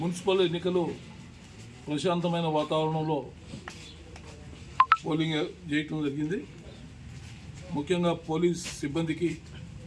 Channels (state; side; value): identical; both; correlation 1.00